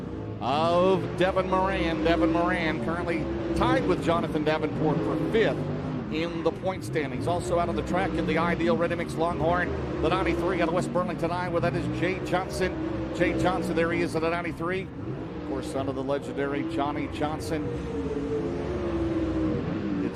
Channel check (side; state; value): both; identical; correlation 1.00